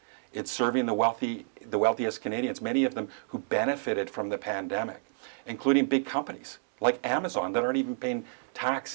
It's serving the wealthiest Canadians, many of them who benefited from the pandemic, including big companies like Amazon that aren't even paying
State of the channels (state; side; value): silent; left; digital silence